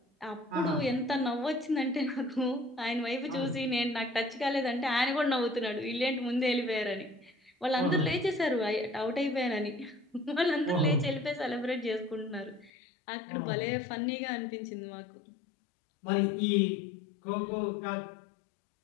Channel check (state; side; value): drops out; right; at 12.7 s